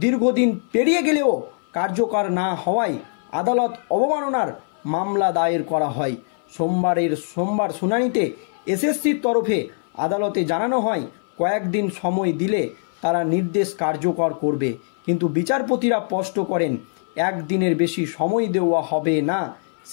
দীর্ঘদিন পেরিয়ে গেলেও কার্যকর না হওয়ায় আদালত অবমাননার মামলা দায়ের করা হয়। সোমবার শুনানিতে এসএসসির তরফে আদালতে জানানো হয় কয়েকদিন সময় দিলে তারা নির্দেশ কার্যকর করবে, কিন্তু বিচারপতিরা স্পষ্ট করেন একদিনের বেশি সময় দেওয়া হবে না।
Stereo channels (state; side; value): silent; right; 59 dB below the other